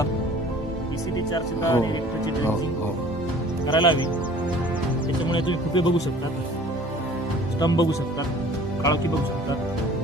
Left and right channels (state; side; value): normal; both; correlation 0.49